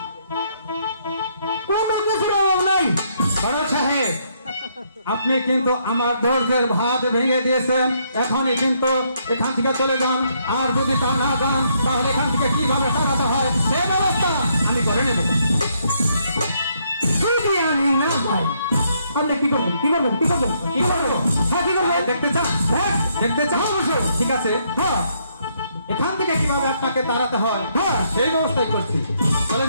কোনো কিছুর অভাব নাই। বড় সাহেব, আপনি কিন্তু আমার ধৈর্যের ভাত ভেঙে দিয়েছেন। এখনই কিন্তু এখান থেকে চলে যান, আর যদি তা না যান তাহলে এখান থেকে কিভাবে টাকাটা হয় সে ব্যবস্থা আমি করে নেব। যদি আমি না যাই আপনি কি করবেন? কি করবেন? কি করবেন? কি করবো? হ্যাঁ, কি করবেন? দেখতে চান? হ্যাঁ, দেখতে চান? অবশ্যই। ঠিক আছে, হ্যাঁ, এখান থেকে কিভাবে আপনাকে তাড়াতে হয় হ্যাঁ। সেই ব্যবস্থাই করছি। চলে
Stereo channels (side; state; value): both; inverted; correlation -0.72